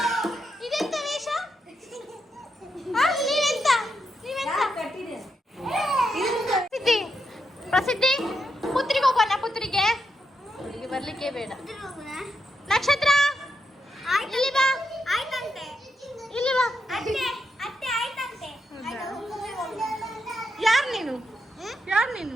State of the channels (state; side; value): normal; both; correlation 0.83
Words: ಇದೆಂತ ವೇಷ? ಪ್ರಸಿದ್ಧಿ ಪುತ್ರಿಗೆ ಹೋಗೋಣ. ಪುತ್ರಿಗೆ ಬರ್ಲಿಕ್ಕೆ ಬೇಡ. ನಕ್ಷತ್ರ ಇಲ್ಲಿ ಬಾ. ಇಲ್ಲಿ ಬಾ. ಯಾರು